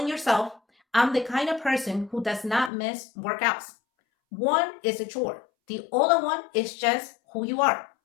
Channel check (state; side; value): drops out; right; at 2.7 s